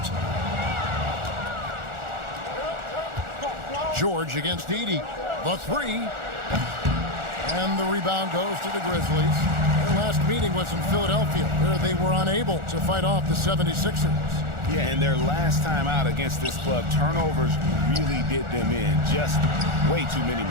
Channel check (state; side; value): late; left; 1.4 ms